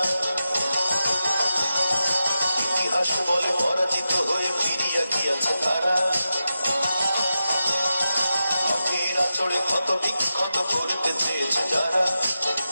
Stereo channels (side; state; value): both; inverted; correlation -0.90